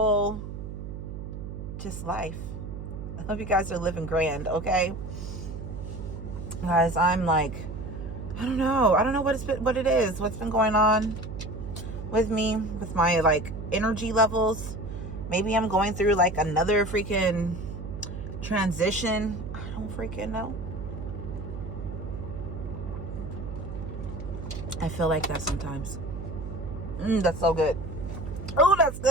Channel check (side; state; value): right; noise; hum, 8 dB below the sound